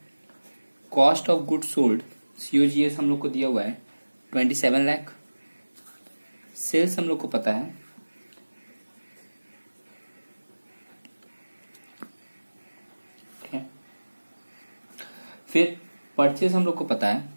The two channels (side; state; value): both; inverted; correlation -1.00